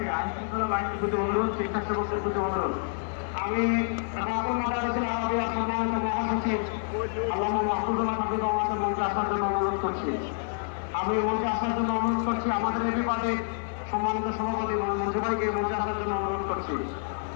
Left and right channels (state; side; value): silent; right; 59 dB below the other